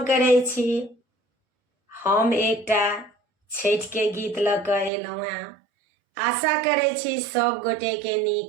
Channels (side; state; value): left; drops out; at 4.9 s